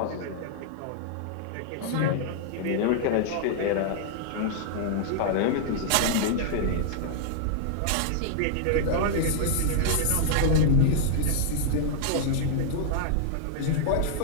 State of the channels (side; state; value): both; different; correlation -0.01